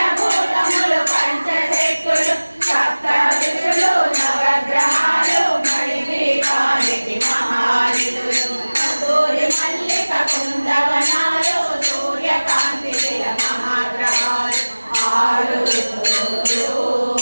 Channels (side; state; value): both; inverted; correlation -1.00